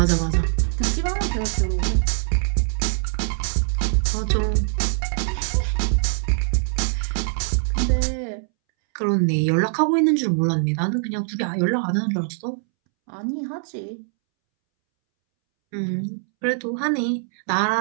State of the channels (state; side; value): silent; left; 64 dB below the other